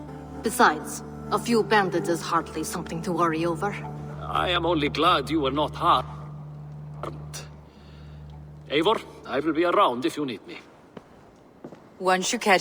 Besides, a few bandits is hardly something to worry over. I am only glad you were not harmed. Eivor, I will be around if you need me. Once you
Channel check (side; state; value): both; identical; correlation 1.00